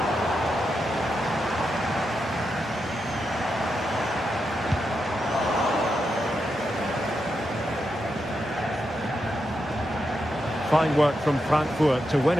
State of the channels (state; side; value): normal; both; correlation 0.85